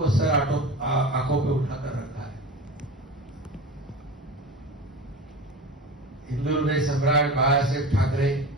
सर आंखों पे उठाकर रखा है. हिंदू हृदय सम्राट बाळासाहेब ठाकरे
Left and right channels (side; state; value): both; normal; correlation 0.31